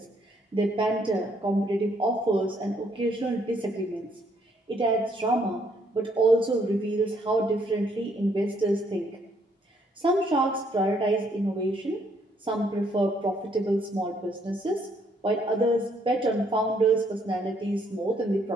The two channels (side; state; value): both; normal; correlation 0.69